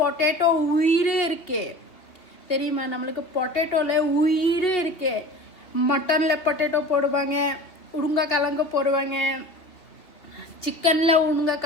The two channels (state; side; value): late; right; 2.9 ms